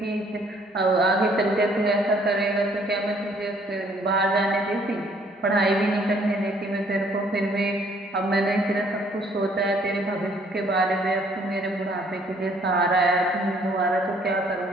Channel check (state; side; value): normal; both; correlation 0.62